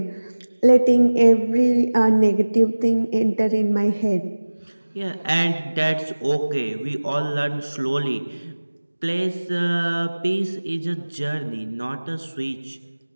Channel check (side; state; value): both; inverted; correlation -1.00